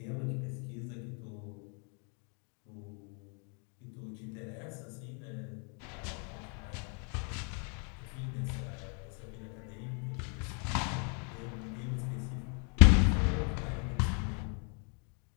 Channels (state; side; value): quieter; right; 39.1 dB